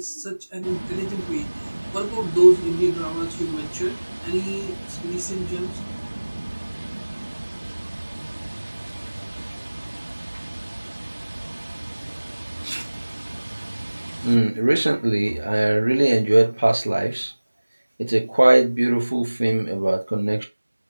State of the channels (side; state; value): both; inverted; correlation -1.00